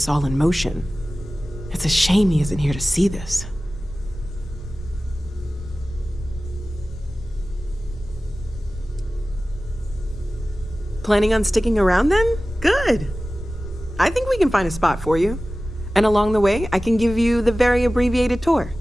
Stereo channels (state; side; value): normal; both; correlation 0.96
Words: all in motion. It's a shame he isn't here to see this. Planning on sticking around then? Good. I think we can find a spot for you. And along the way, I can give you the very abbreviated tour.